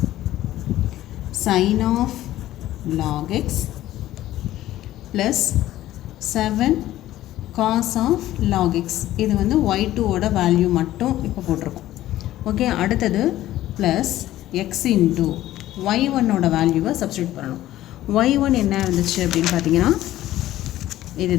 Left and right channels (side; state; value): right; quieter; 14.4 dB